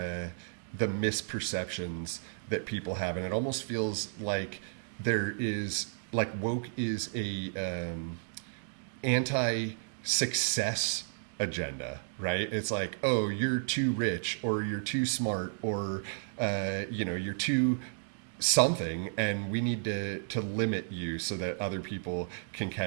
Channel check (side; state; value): left; silent; digital silence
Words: misperceptions that people have, and it almost feels like there is, like, woke is a anti-success agenda, right? It's like, oh, you're too rich, or you're too smart, or you're too something, and we need to limit you so that other people can